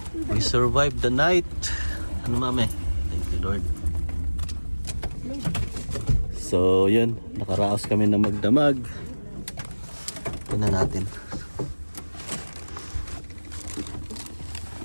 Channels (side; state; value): both; inverted; correlation -1.00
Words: We survived the night. Ano mami? Thank you Lord. So yun, nakaraos kami ng magdamag. Tingnan natin.